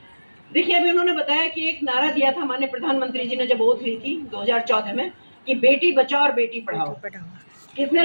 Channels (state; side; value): inverted; both; correlation -1.00